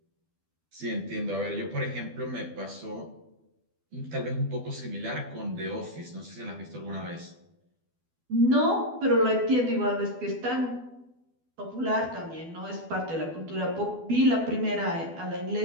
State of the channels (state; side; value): late; left; 12 ms